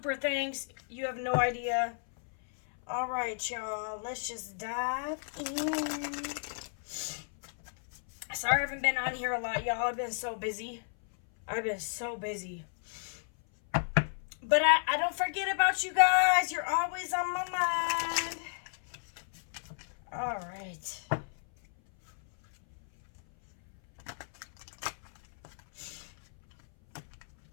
thanks. You have no idea. All right, y'all. Let's just dive in. Sorry I haven't been on here a lot, y'all. I've been so busy. But I don't forget about you guys. You're always on my mind. All right.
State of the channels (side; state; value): right; silent; 56 dB below the other